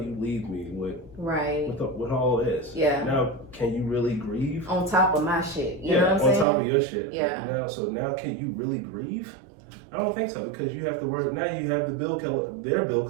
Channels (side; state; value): left; drops out; at 6.5 s